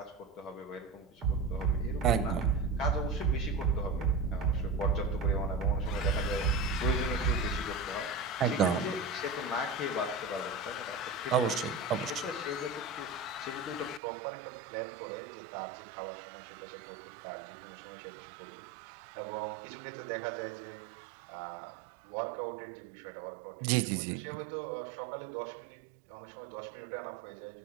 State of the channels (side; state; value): left; drops out; at 14.0 s